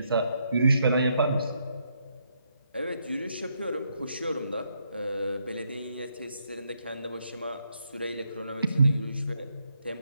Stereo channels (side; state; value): both; inverted; correlation -0.77